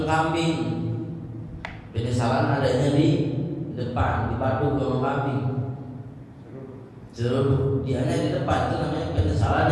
kambing. Penyesalan adanya di depan, dipadu sama kambing. Jeruk dianya di depan, itu namanya penyesalan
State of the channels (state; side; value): identical; both; correlation 1.00